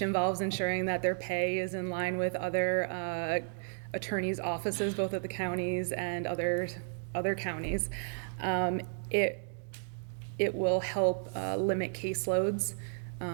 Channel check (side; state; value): left; silent; digital silence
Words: involves ensuring that their pay is in line with other attorneys' offices, both at the counties and other counties. It will help limit caseloads.